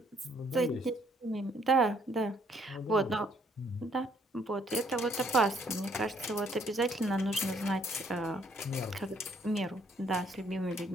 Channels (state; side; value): normal; both; correlation 0.66